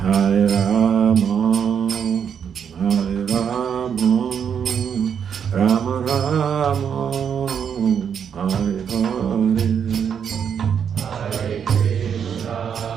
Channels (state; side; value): quieter; left; 7.7 dB